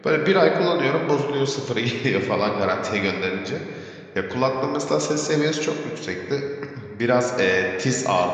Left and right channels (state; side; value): identical; both; correlation 1.00